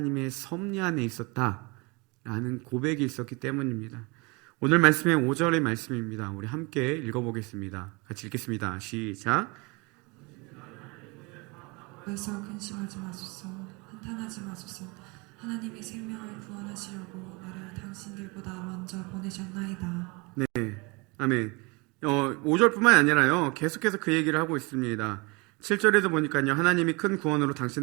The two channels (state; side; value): quieter; left; 27.6 dB